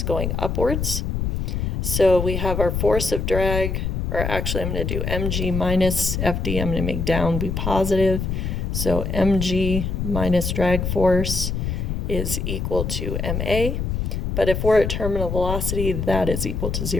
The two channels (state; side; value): noise; left; rumble, 2 dB below the sound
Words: going upwards. So we have our force of drag, or actually I'm going to do mg minus fd. I'm going to make down be positive. So mg minus drag force is equal to ma. But if we're at terminal velocity, that is equal to